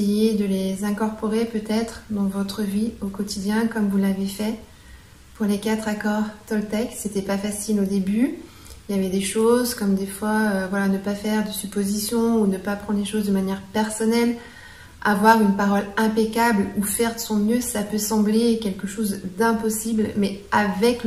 de les incorporer peut-être dans votre vie au quotidien comme vous l'avez fait pour les 4 accords Toltec. C'était pas facile au début. Il y avait des choses comme des fois, voilà, ne pas faire de suppositions ou ne pas prendre les choses de manière personnelle. Avoir une parole impeccable ou faire de son mieux, ça peut sembler quelque chose d'impossible, mais avec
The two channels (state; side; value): identical; both; correlation 1.00